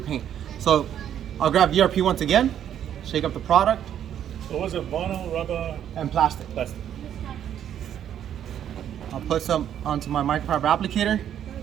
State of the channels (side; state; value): left; quieter; 10.0 dB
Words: paint. So I'll grab VRP once again, shake up the product, So was it vinyl, rubber, and plastic. plastic? I'll put some onto my microfiber applicator.